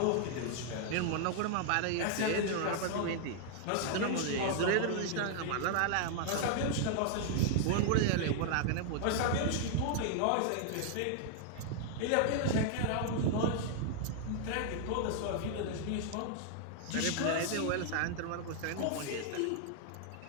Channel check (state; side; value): different; both; correlation 0.00